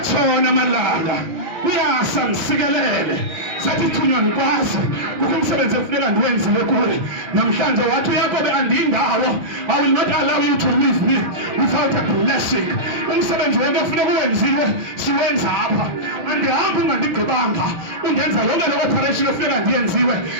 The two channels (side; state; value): left; late; 5.9 ms